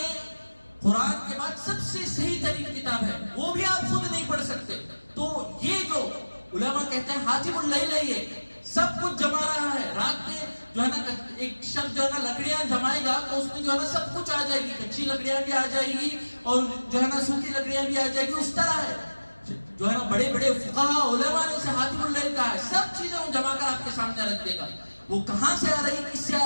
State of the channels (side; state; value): both; inverted; correlation -1.00